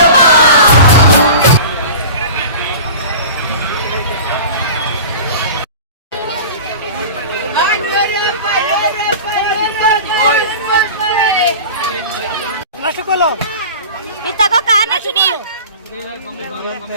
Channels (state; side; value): inverted; both; correlation -0.36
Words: ಇತ್ತಗೋ ಕಾರಣ ಶುನಿ.